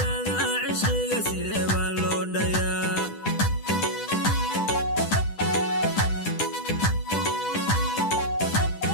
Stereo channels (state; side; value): late; right; 10 ms